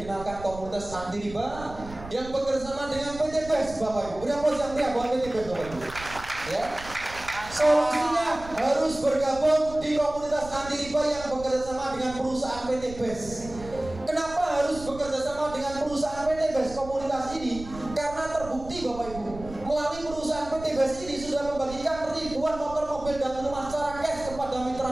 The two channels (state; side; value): noise; right; rumble, 15 dB below the sound